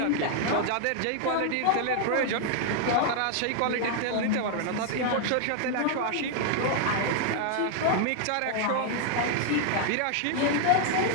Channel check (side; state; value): both; different; correlation 0.00